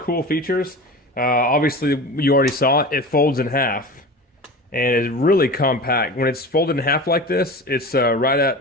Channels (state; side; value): normal; both; correlation 0.32